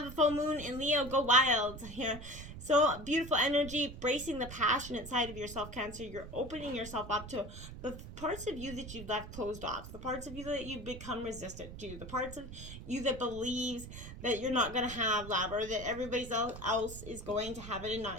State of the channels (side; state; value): right; noise; rumble, 12 dB below the sound